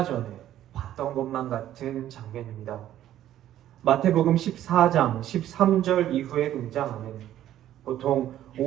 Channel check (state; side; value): quieter; left; 12.3 dB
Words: 전에 봤던 것만 같은 장면입니다. 마태복음 14장 13절 이후에 등장하는 보통